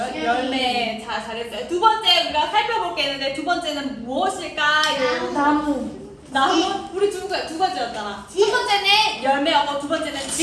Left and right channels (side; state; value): both; identical; correlation 1.00